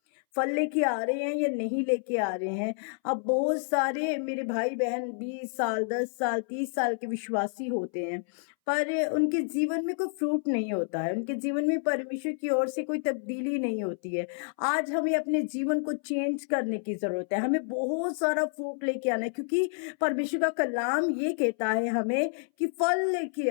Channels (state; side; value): silent; right; 59 dB below the other